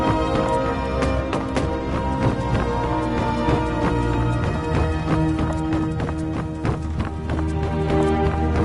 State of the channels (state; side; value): identical; both; correlation 1.00